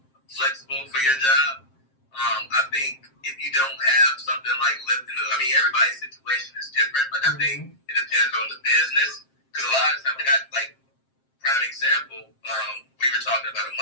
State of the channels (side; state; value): right; late; 7.5 ms